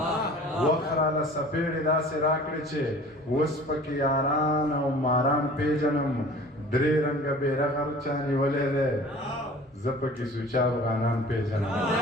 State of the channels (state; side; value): normal; both; correlation 0.45